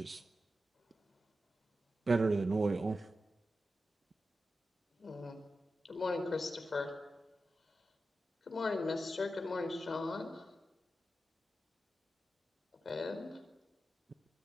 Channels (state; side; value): normal; both; correlation 0.91